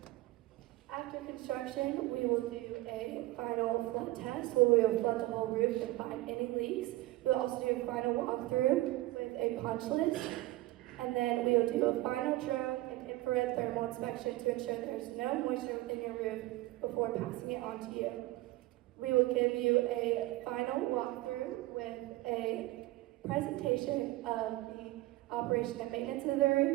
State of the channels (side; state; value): left; quieter; 18.4 dB